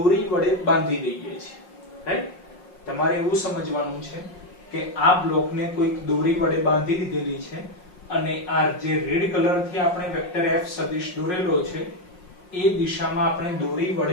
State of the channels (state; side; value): late; right; 5.6 ms